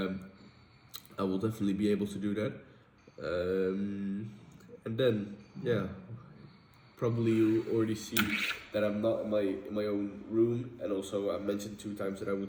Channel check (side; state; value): both; identical; correlation 1.00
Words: will definitely be able to do that. And then yeah, probably you already see that I'm not in my own room, and also I mentioned 2 times that I